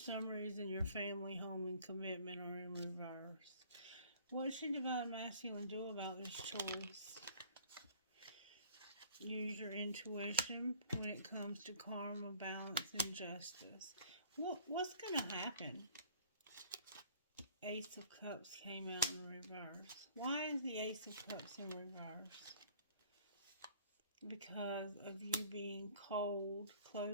reason your family, home, and commitment are in reverse. What should Divine Masculine do about this choice? Use your intuition when it comes to karma, balance, and justice. What's going to happen? Ace of Cups came out in reverse. Why is the Ace of Cups in reverse? Because of you being cold,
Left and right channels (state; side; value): inverted; both; correlation -0.52